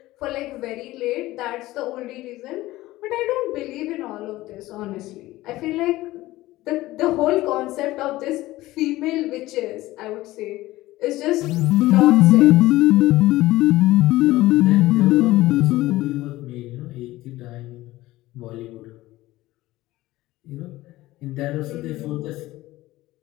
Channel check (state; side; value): quieter; right; 17.4 dB